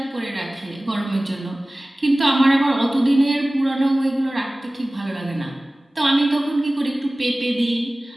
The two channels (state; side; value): normal; both; correlation 0.98